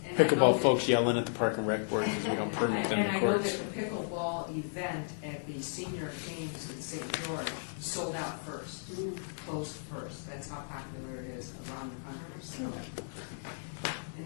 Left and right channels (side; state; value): right; silent; digital silence